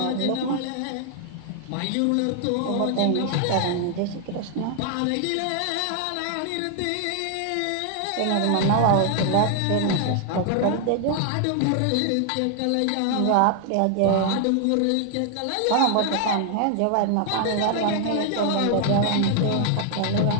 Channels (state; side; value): different; both; correlation 0.00